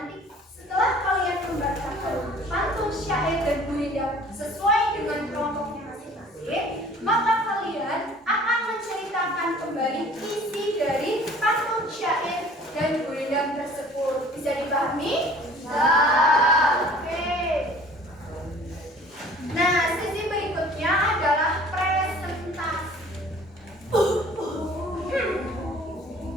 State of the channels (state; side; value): normal; both; correlation 0.50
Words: setelah kalian membacakan pantun syair dan gurindam sesuai dengan kelompoknya masing-masing, maka kalian akan menceritakan kembali isi dari pantun syair dan gurindam tersebut. Bisa dipahami? Bisa. Oke. Nah, sesi berikutnya adalah presentasi.